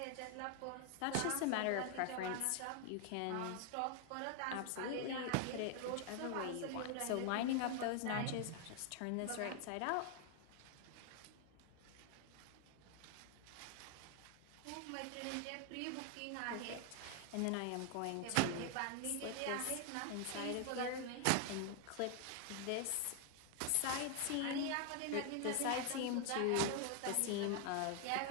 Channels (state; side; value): different; both; correlation 0.00